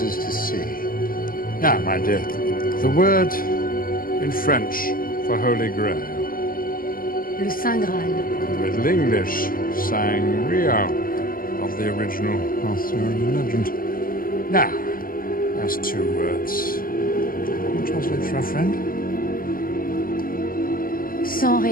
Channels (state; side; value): late; right; 0.42 ms